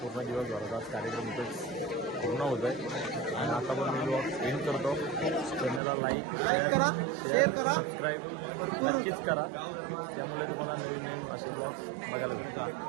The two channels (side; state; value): left; drops out; at 5.8 s